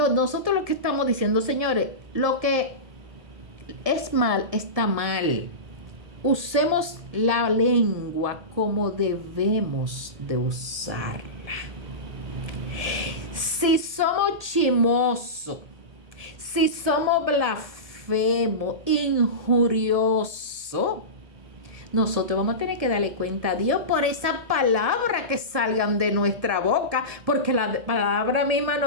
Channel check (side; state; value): left; late; 1.8 ms